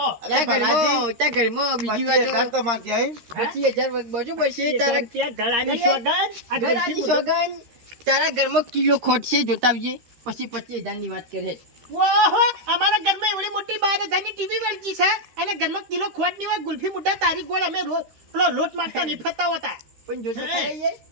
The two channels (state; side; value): late; left; 13 ms